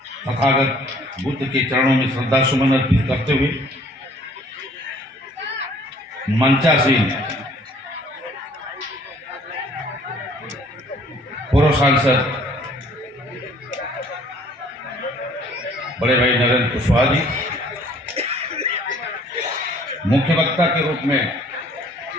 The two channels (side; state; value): both; normal; correlation 0.57